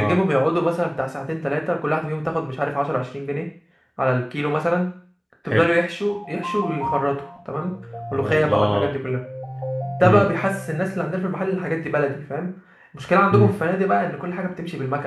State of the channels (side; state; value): both; identical; correlation 1.00